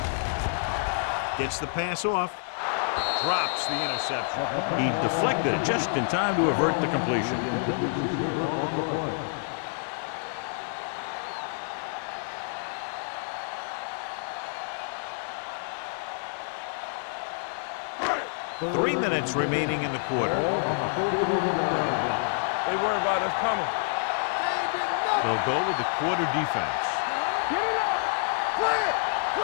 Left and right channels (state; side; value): silent; right; digital silence